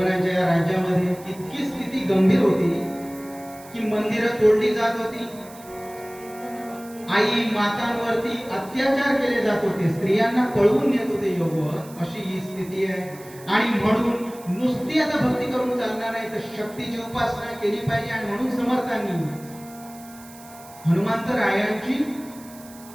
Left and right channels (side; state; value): right; noise; hiss, 21 dB below the sound